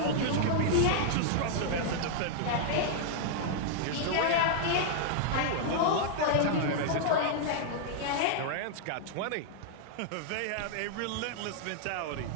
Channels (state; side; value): different; both; correlation -0.01